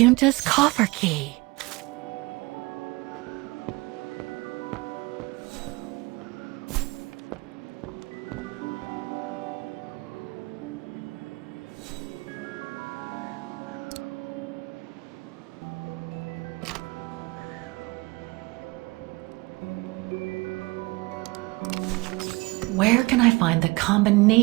coffer key. Where can I find the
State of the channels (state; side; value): quieter; left; 24.0 dB